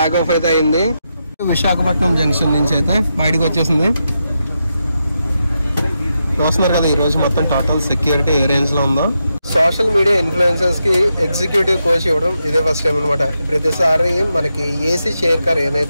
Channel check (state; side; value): inverted; both; correlation -0.86